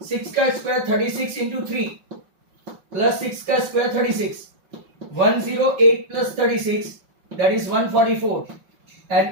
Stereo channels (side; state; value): left; late; 5.5 ms